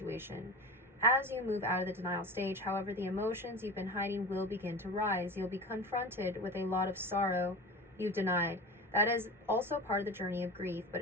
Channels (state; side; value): normal; both; correlation 0.31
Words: As you move out of the denial stage, however, the emotions you've been hiding will begin to rise. You'll be confronted with a lot of sorrow you've denied. That is also part of the journey of grief, but